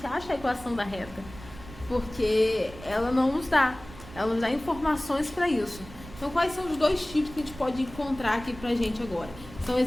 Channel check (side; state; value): right; noise; rumble, 16 dB below the sound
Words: ache a equação da reta, porque ela nos dá informações para isso. Então, quais são os dois tipos que a gente pode encontrar aqui pra gente agora? São